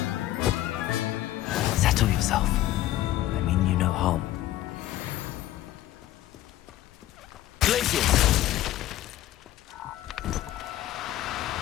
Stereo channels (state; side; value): quieter; right; 14.0 dB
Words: Settle yourself. I mean you no harm. Glaciers!